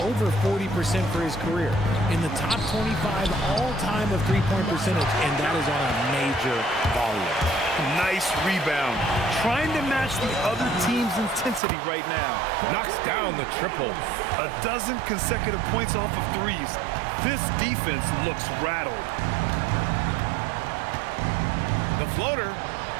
40% for his career. In the top 25 all-time of three-point percentage, and that is on a major volume. Nice rebound. Trying to match the other team's intensity right now. Knocks down the triple. A dozen consecutive points off of threes. This defense looks rattled. The floater.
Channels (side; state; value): left; drops out; at 11.6 s